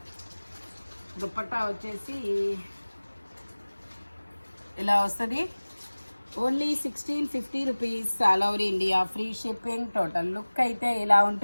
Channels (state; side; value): inverted; both; correlation -1.00